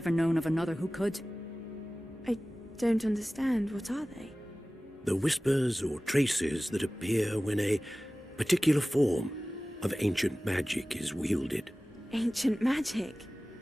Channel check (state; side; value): normal; both; correlation 0.97